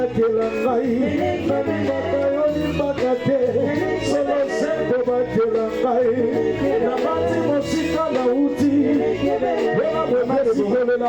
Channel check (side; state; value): left; noise; rumble, 26 dB below the sound